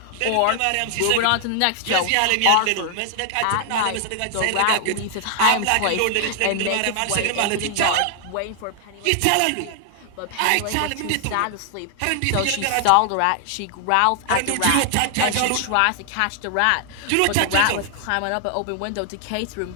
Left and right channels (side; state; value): both; different; correlation 0.00